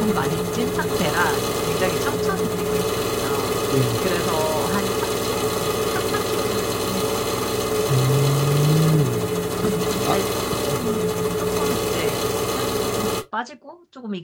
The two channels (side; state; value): both; identical; correlation 1.00